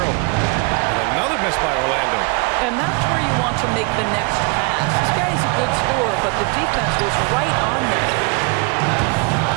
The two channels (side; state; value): left; quieter; 30.2 dB